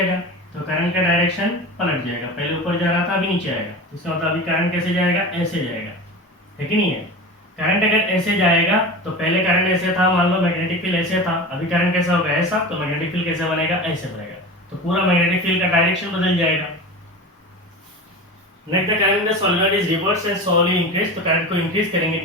तो करंट का डायरेक्शन पलट जाएगा, पहले ऊपर जा रहा था अभी नीचे आएगा। इसका मतलब अभी करंट कैसे जाएगा, ऐसे जाएगा, है कि नहीं है। करंट अगर ऐसे जाएगा तो पहले करंट ऐसे था, मान लो मैग्नेटिक फील्ड ऐसे था, अभी करंट कैसा होगा, ऐसा, तो मैग्नेटिक फील्ड कैसे बनेगा, ऐसे बनेगा। तो पूरा मैग्नेटिक फील्ड का डायरेक्शन बदल जाएगा। Next the current in the solenoid is reverse and slowly increase. तो करंट को इंक्रीज करेंगे,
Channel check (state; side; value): normal; both; correlation 0.30